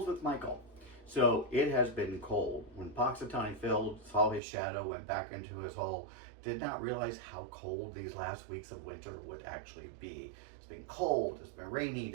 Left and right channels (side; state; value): left; drops out; at 4.4 s